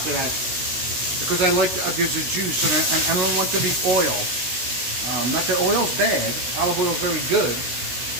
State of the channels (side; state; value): left; late; 16 ms